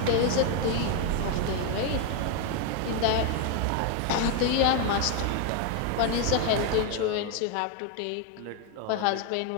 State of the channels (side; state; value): both; different; correlation 0.01